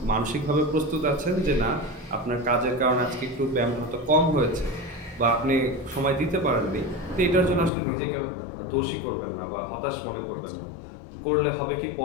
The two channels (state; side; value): drops out; right; at 7.7 s